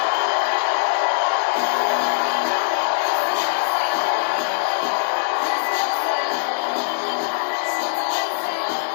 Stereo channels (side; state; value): right; silent; digital silence